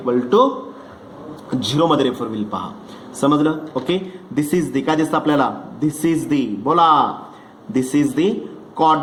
to 0 मध्ये रेफर होईल पहा. समजलं. ओके दिस इज दी काय दिसतं आपल्याला दिस इज दी बोला this is the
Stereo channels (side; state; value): both; identical; correlation 1.00